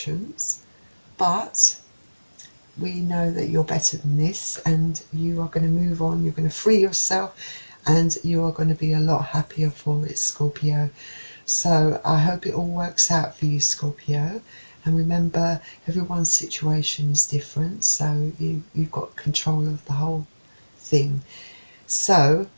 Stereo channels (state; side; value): inverted; both; correlation -1.00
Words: but we know that you're better than this, and you are going to move on, you're going to free yourself, and you are going to be a lot happier for it, Scorpio. So I hope it all works out for you, Scorpio. And remember, everyone's situation is different, so you've got control of the whole thing. So